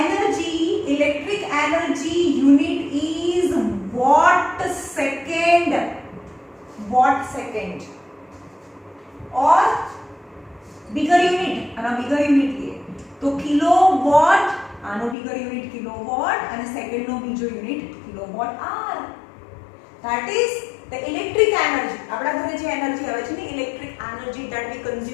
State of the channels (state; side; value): drops out; right; at 15.2 s